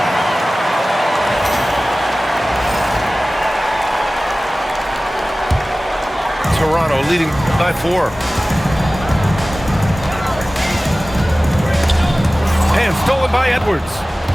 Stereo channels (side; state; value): both; normal; correlation 0.97